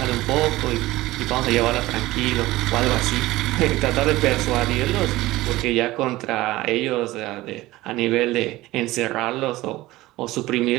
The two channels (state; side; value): quieter; left; 18.0 dB